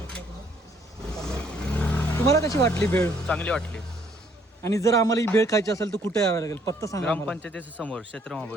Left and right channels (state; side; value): normal; both; correlation 0.65